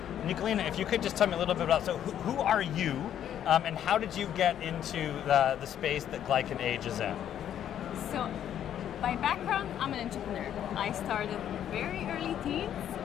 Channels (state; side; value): quieter; right; 10.3 dB